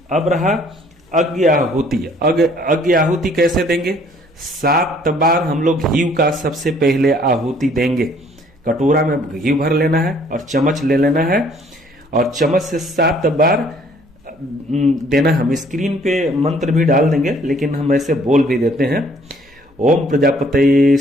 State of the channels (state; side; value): normal; both; correlation 0.60